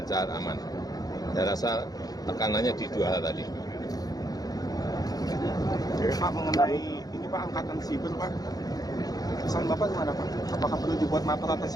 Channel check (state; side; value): late; right; 0.18 ms